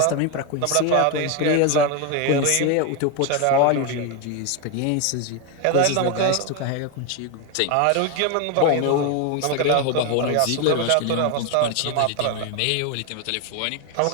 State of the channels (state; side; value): different; both; correlation 0.02